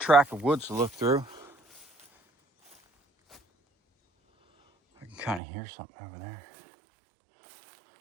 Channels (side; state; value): left; drops out; at 5.4 s